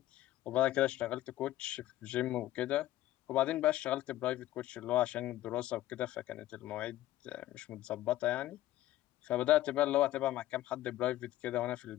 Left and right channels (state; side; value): quieter; right; 14.6 dB